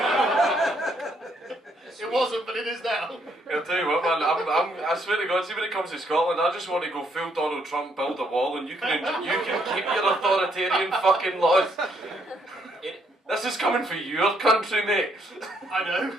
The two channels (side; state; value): both; normal; correlation 0.71